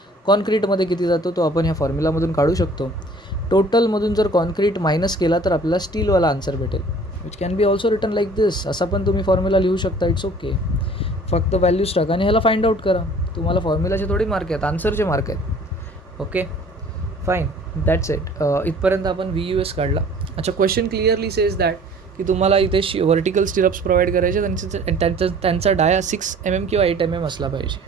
कॉन्क्रीटमध्ये किती जातो तो आपण ह्या फॉर्म्युलामधून काढू शकतो. टोटलमधून जर कॉन्क्रीट मायनस केला तर आपल्याला स्टीलवाला आन्सर भेटेल, which can be also written like this. असा पण तुम्ही फॉर्म्युला लिहू शकता, इट्स ओके. फक्त व्हॅल्यूज टाका आणि ह्याला फाइंड आउट करा. तुम्हाला फॉर्म्युलाचे थोडी मार्क आहेत, आन्सरचे मार्क आहेत. Okay fine, that's it. इथपर्यंत आपण VUS काढला. अच्छा, क्वेश्चन क्लिअरली सेज दॅट की तुम्हाला इथे व्हर्टिकल स्टिरप्स प्रोव्हाइड करायचे, त्यांचा डाया 6 mm किंवा 8 mm असला पाहिजे.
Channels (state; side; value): normal; both; correlation 0.51